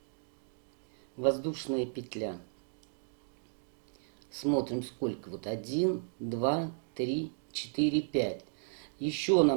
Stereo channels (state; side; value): silent; left; digital silence